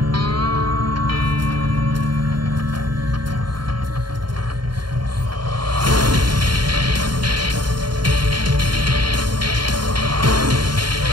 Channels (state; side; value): late; left; 0.72 ms